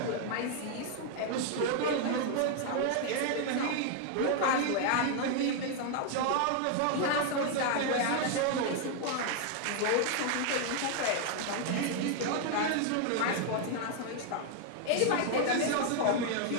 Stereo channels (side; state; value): both; different; correlation 0.00